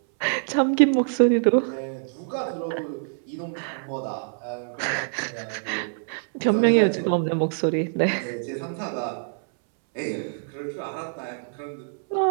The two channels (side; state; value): left; silent; 61 dB below the other